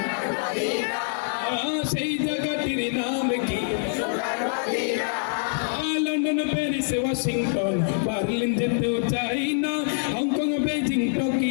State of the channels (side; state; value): right; silent; 62 dB below the other